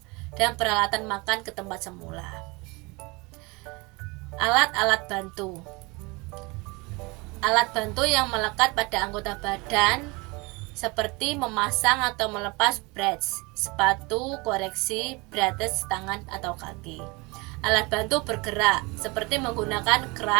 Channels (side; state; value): left; quieter; 26.1 dB